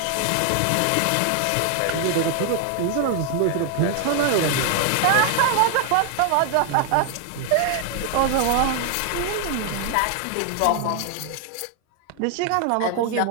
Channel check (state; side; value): different; both; correlation 0.00